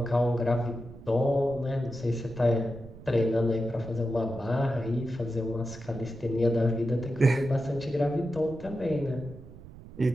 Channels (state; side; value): noise; right; rumble, 17 dB below the sound